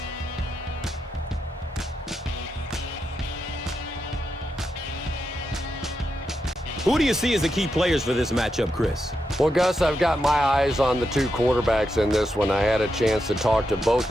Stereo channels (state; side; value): normal; both; correlation 0.85